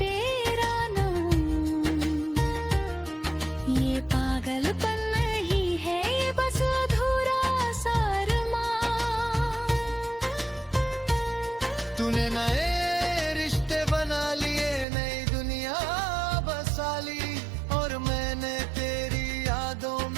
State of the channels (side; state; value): left; drops out; at 14.9 s